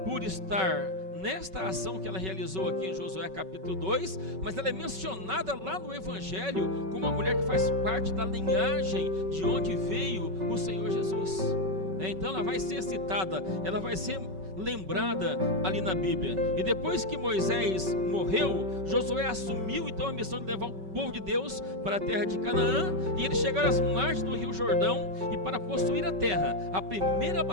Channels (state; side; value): late; left; 5.3 ms